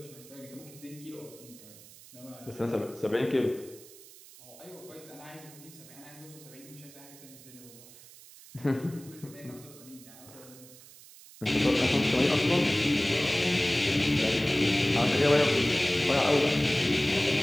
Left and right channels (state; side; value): noise; right; hiss, 20 dB below the sound